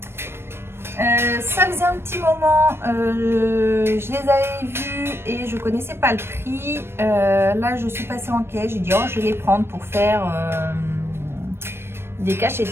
Ça faisait un petit moment, je les avais vus et je connaissais pas le prix. Là, je suis passée en caisse, j'ai dit oh, je vais les prendre pour faire des cachets de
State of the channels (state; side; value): late; left; 0.12 ms